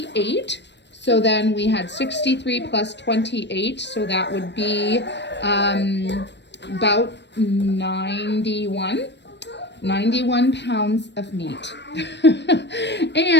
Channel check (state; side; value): late; right; 0.51 ms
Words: So then we had 63 plus 28. So that would be about 91 pounds of meat.